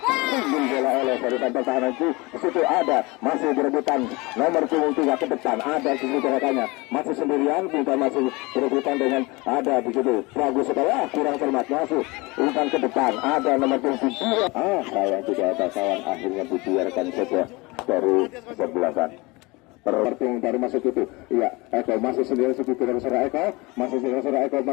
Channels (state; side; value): quieter; right; 24.5 dB